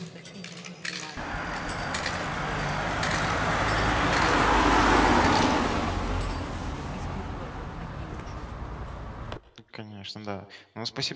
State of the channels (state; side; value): identical; both; correlation 1.00